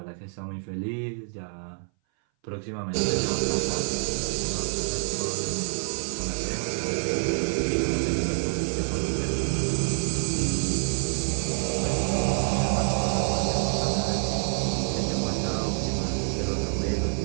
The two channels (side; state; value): left; silent; 58 dB below the other